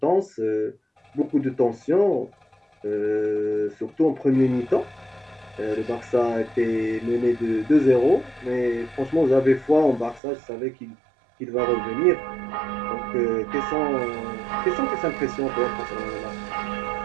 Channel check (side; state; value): left; drops out; at 10.2 s